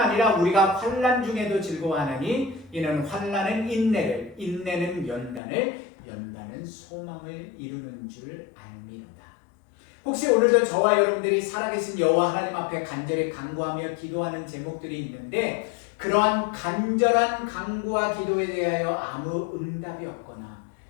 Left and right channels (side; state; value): right; drops out; at 5.4 s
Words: 우리가 환난 중에도 즐거워하나니 이는 환난은 인내를, 인내는 연단을, 연단은 소망을 이루는 줄 알미로다. 혹시 오늘도 저와 여러분들이 살아계신 여호와 하나님 앞에 간절히 간구하며 기도하는 제목들이 있는데 그러한 간절한 간구와 기도에 대하여 아무 응답이 없거나